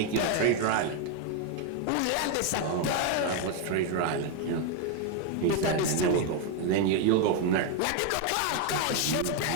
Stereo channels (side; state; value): both; different; correlation 0.01